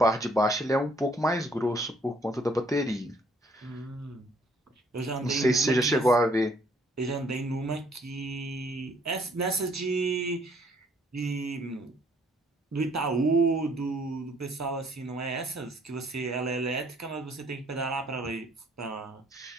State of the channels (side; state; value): both; normal; correlation 0.64